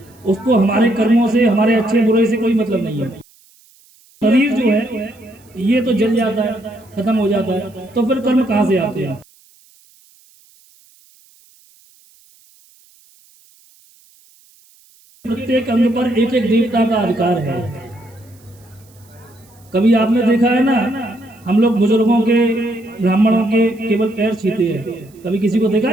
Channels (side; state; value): right; noise; hiss, 30 dB below the sound